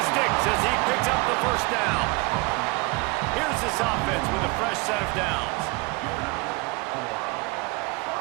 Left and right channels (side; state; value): left; quieter; 26.1 dB